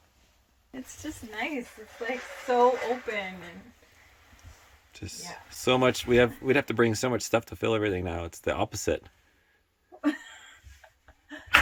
It's just nice. It's like so open and just so much. We'd have to bring so much stuff to fill everything now. It's the opposite. I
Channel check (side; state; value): both; identical; correlation 1.00